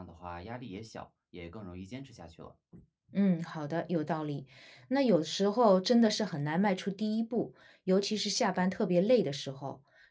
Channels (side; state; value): both; identical; correlation 1.00